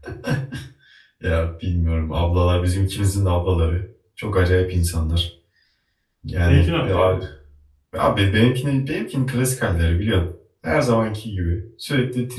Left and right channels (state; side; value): identical; both; correlation 1.00